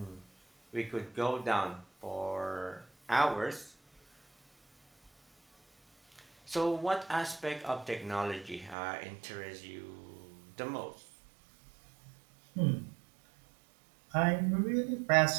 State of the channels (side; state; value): left; drops out; at 8.8 s